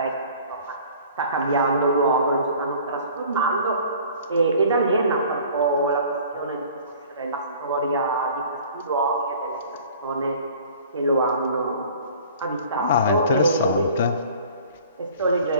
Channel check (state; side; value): inverted; both; correlation -0.48